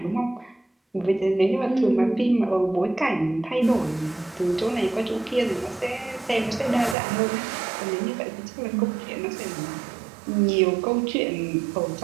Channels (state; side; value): drops out; left; at 7.0 s